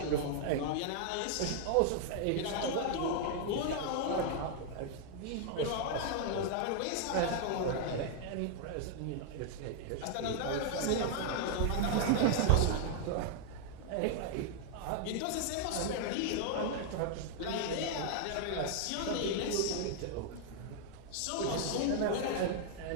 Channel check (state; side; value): different; both; correlation 0.00